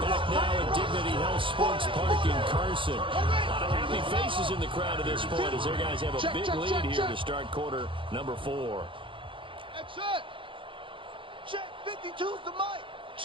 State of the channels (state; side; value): late; left; 0.25 ms